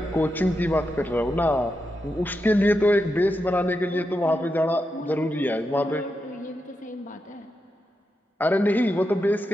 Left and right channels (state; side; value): normal; both; correlation 0.87